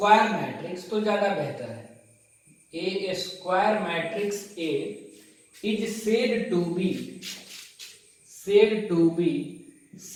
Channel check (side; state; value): both; identical; correlation 1.00